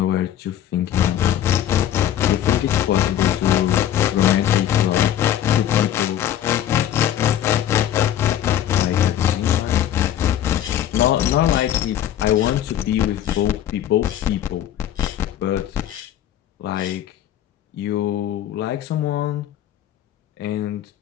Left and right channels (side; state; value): right; quieter; 11.2 dB